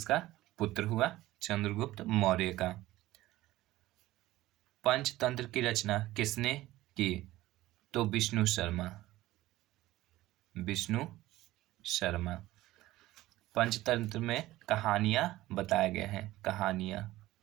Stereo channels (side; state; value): left; quieter; 16.7 dB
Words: पुत्र हुआ चंद्रगुप्त मौर्य का। पंचतंत्र की रचना किसने की? तो विष्णु शर्मा। विष्णु शर्मा। पंचतंत्र में कहानियां बताए गए हैं। कहानियां।